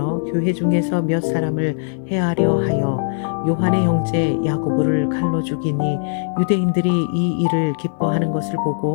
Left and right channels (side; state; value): right; silent; digital silence